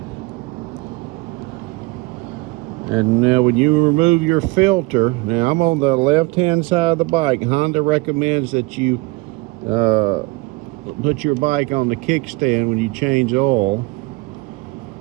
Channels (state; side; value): quieter; left; 24.1 dB